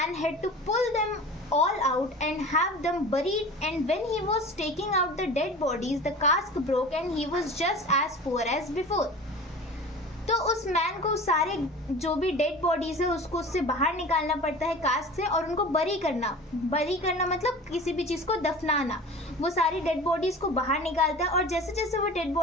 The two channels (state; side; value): normal; both; correlation 0.37